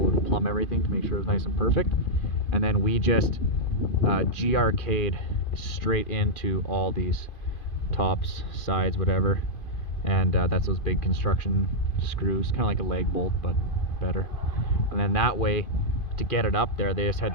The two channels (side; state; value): right; late; 2.5 ms